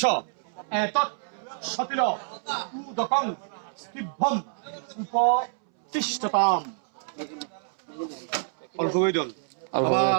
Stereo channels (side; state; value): left; silent; 60 dB below the other